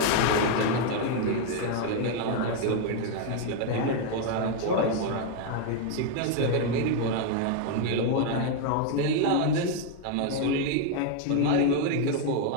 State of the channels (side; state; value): both; different; correlation 0.01